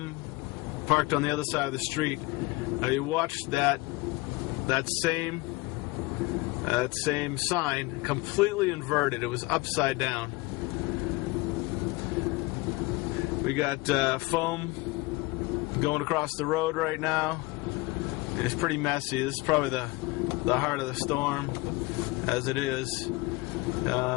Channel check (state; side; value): quieter; right; 22.7 dB